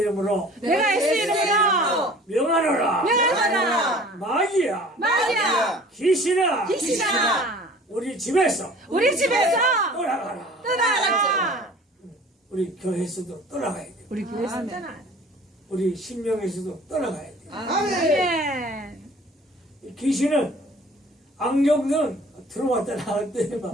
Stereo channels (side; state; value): both; normal; correlation 0.48